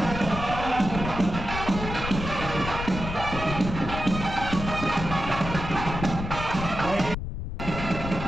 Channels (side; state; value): left; noise; rumble, 6 dB below the sound